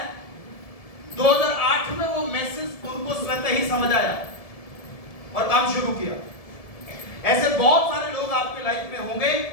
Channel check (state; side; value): late; right; 1.7 ms